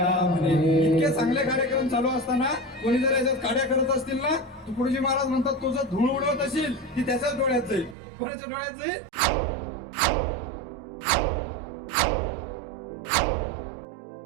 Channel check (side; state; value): left; drops out; at 8.0 s